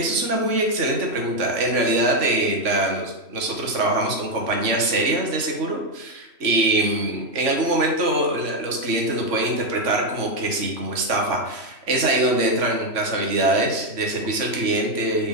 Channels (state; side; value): late; left; 3.0 ms